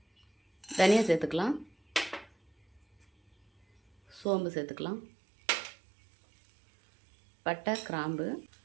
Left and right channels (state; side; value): drops out; left; at 4.2 s